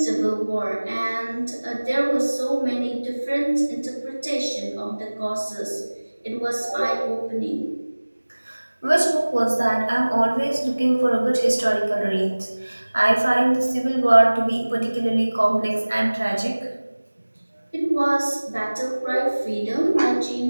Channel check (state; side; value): inverted; both; correlation -1.00